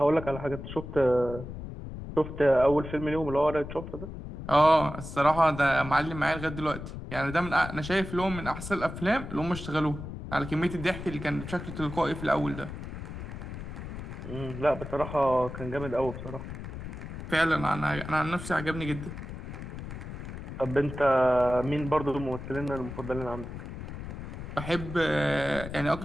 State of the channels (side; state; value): left; noise; rumble, 9 dB below the sound